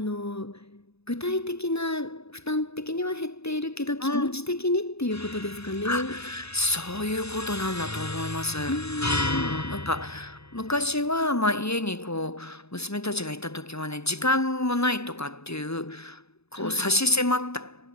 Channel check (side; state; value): right; late; 0.79 ms